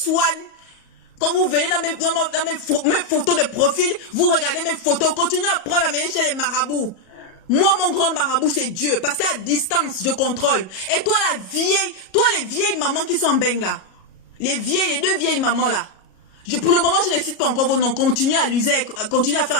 Quand vous venez dans mes photos de profil, vous regardez mes photos. Continuez à prendre la mêler chez les marabouts. Moi, mon grand marabout, c'est Dieu. Parce qu'à distance, je contrôle. Et toi, les vieilles mamans qui sont en benga. Les deux vieilles mamans là. Pour le moment, je ne cite pas encore vos noms. Continuez à faire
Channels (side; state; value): right; late; 37 ms